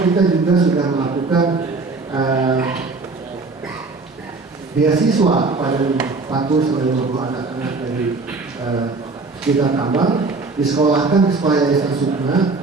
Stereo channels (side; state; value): left; quieter; 3.9 dB